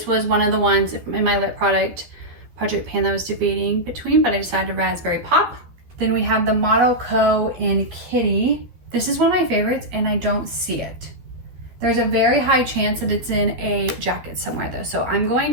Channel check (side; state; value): left; late; 12 ms